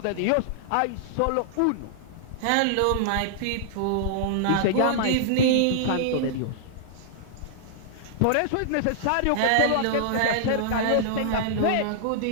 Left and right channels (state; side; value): different; both; correlation -0.01